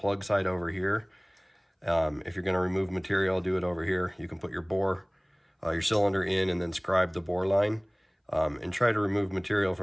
side over here. If you're going to remove material, do it over here. You can put your bore, your cylinder in and then scribe the bore line, and try to remove material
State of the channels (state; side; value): identical; both; correlation 1.00